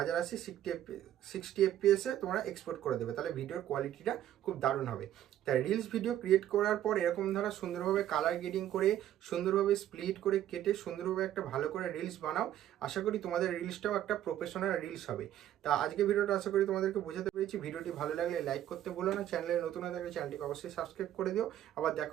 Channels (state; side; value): quieter; left; 11.9 dB